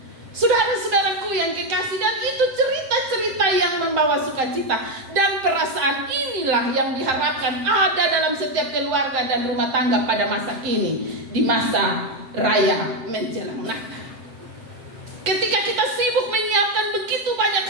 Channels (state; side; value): late; left; 7.7 ms